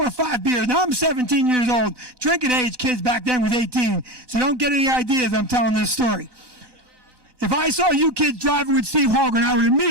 or 5 beers. Now I'm 17 years old. Drinking age kids back then was 18, so don't get any ideas I'm telling this story. If I saw you kids driving with Steve Holgren, I would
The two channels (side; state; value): left; late; 1.2 ms